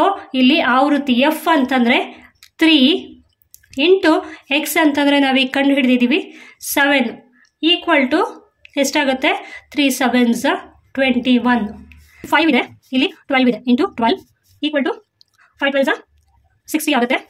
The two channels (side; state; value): both; identical; correlation 1.00